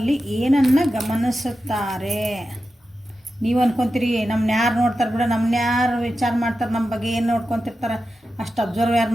ಏನನ್ನು ಗಮನಿಸುತ್ತಾರೆ. ನೀವು ಅನ್ಕೊತೀರಿ ನಮ್ಮನ್ನ ಯಾರು ನೋಡ್ತಾರೆ ಬಿಡ, ನಮ್ಮನ್ನ ಯಾರು ವಿಚಾರ ಮಾಡ್ತಾರೆ, ನಮ್ಮ ಬಗ್ಗೆ ಏನು ನೋಡ್ಕೊತಿರ್ತಾರೆ, ಅಷ್ಟು ಅಬ್ಸರ್ವ್ ಯಾರು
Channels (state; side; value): normal; both; correlation 0.91